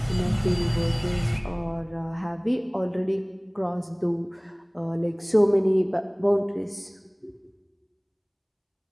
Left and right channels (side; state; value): both; identical; correlation 1.00